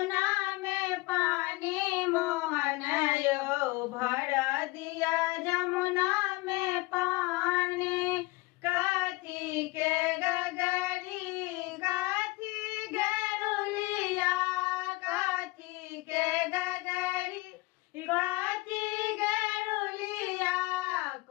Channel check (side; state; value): right; quieter; 22.5 dB